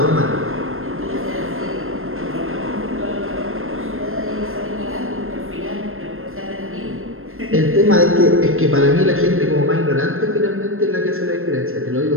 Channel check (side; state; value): left; late; 0.61 ms